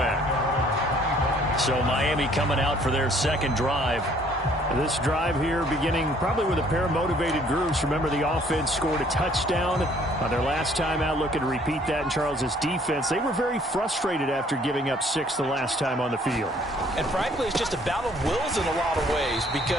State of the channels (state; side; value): normal; both; correlation 0.60